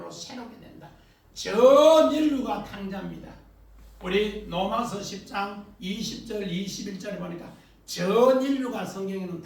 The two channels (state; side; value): identical; both; correlation 1.00